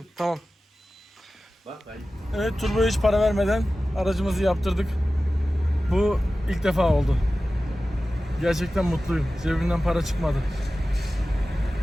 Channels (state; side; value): normal; both; correlation 0.95